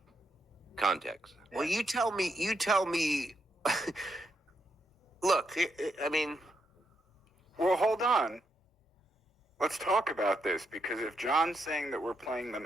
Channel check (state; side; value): normal; both; correlation 0.80